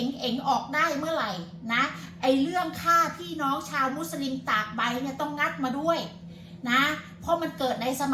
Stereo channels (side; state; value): both; identical; correlation 1.00